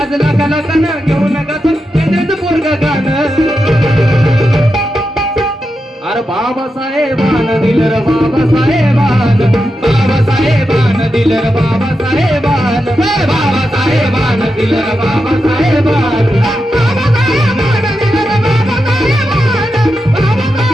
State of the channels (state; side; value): normal; both; correlation 0.88